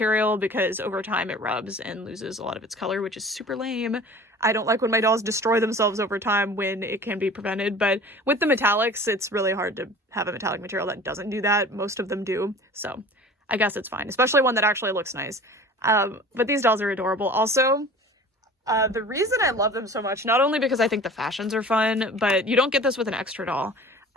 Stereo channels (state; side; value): normal; both; correlation 0.42